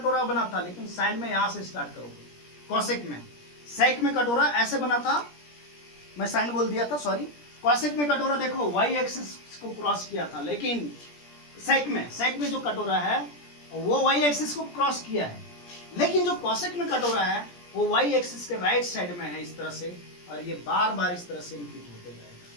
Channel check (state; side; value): late; right; 17 ms